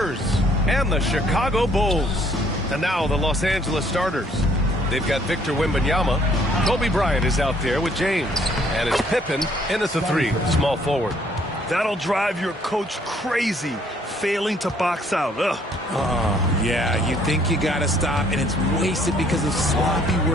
and the Chicago Bulls. And now the Los Angeles starters. They've got Victor Wembanyama. Kobe Bryant is out there with James. And it's Pippen in at the 3, small forward. That'll drive your coach crazy, failing to box out. Ugh. Oh, yeah, you think you got to stop, and it's wasted because of sloppy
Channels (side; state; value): both; normal; correlation 0.64